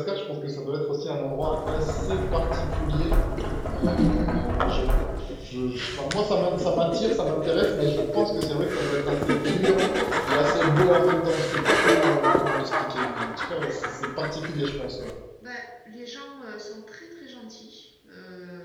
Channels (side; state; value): both; identical; correlation 1.00